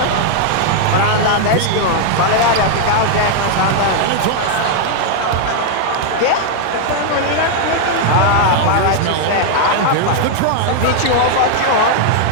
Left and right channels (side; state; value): both; different; correlation 0.00